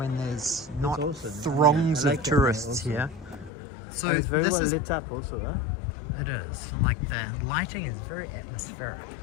there's not throngs of tourists here. So it's very this well is lit up also, huh? It is. So like the lighting is very atmospheric,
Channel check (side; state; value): right; drops out; at 3.5 s